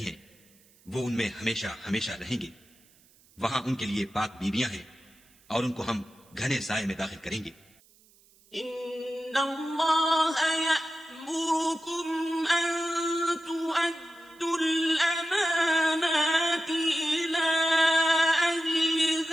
ہیں، وہ ان میں ہمیشہ ہمیشہ رہیں گے. وہاں ان کے لیے پاک بیویاں ہیں اور ان کو ہم گھنے سائے میں داخل کریں گے. ان اللہ یأمرکم ان تؤدوا الامانات الى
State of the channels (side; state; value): right; noise; hiss, 30 dB below the sound